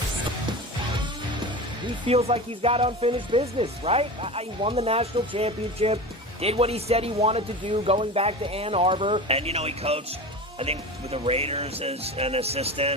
He feels like he's got unfinished business, right? He won the national championship, did what he said he wanted to do going back to Ann Arbor. And, he coached, I think, with the Raiders as an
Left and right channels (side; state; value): both; normal; correlation 0.29